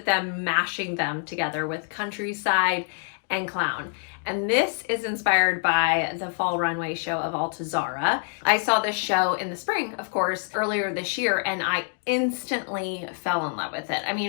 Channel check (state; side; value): silent; right; 57 dB below the other